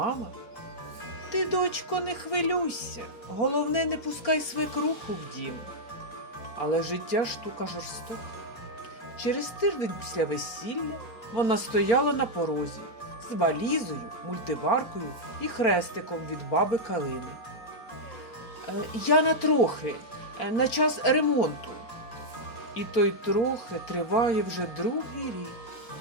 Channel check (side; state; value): right; late; 4.0 ms